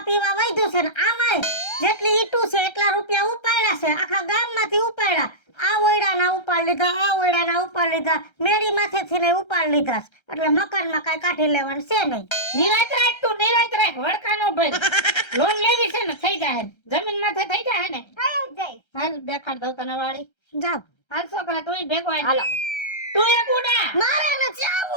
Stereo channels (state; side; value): late; right; 1.3 ms